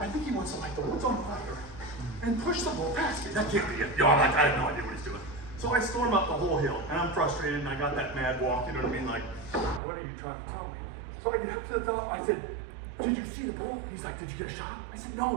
think he wants to light the woods on fire and push the bull past me. That can't be it. I'm like, I have no idea what he's doing. So I storm up the whole hill, and I'm frustrated, and I got that mad walk, you know what I mean? Like, what are you trying to tell me? So I get up to the top, I said, did you see the bull? He's like, did you get a shot? I said,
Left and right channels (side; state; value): left; drops out; at 9.8 s